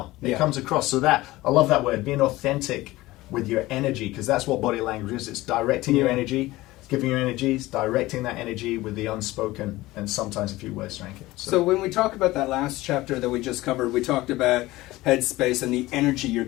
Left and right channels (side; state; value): right; quieter; 18.5 dB